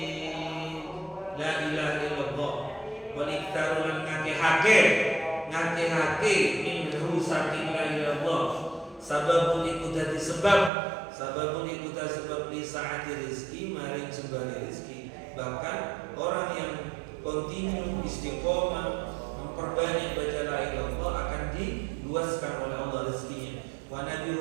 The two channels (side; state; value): left; drops out; at 10.7 s